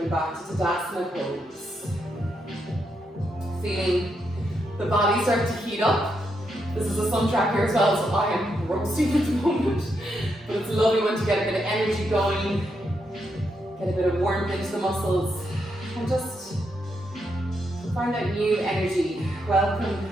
back to Tadasana pose. Feeling the body start to heat up. This is a sun tracker as well, so I am roasting at the moment. But it's a lovely one to get a bit of energy going, get a bit of warmth into the muscles, and just find that new energy. Welcome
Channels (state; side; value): normal; both; correlation 0.81